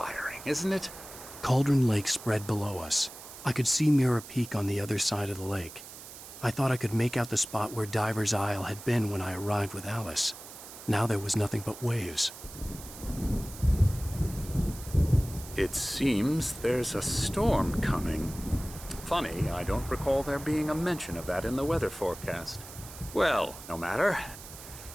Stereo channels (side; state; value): right; noise; hiss, 15 dB below the sound